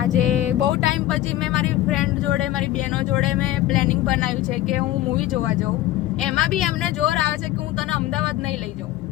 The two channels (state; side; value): quieter; right; 14.6 dB